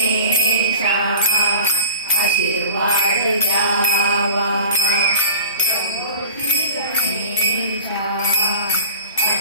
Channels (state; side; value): inverted; both; correlation -0.40